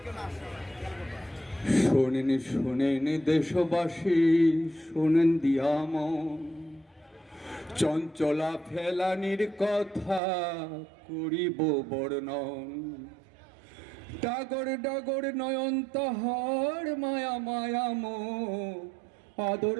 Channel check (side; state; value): left; drops out; at 10.2 s